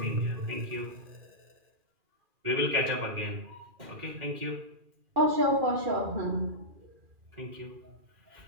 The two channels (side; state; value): left; late; 2.4 ms